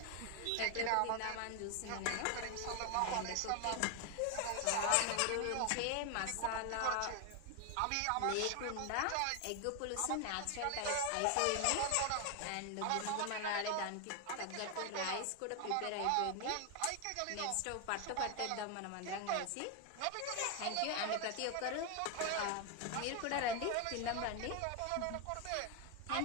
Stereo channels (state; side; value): different; both; correlation 0.01